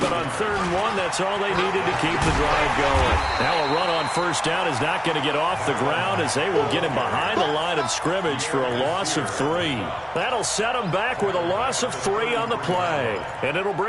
but on third and one, that's all they needed to keep the drive going. Now a run on first down is not going to get off the ground as they will get him behind the line of scrimmage for a loss of 3. That'll set him back with a loss of 3 on the play. And it'll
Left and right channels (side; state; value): both; identical; correlation 1.00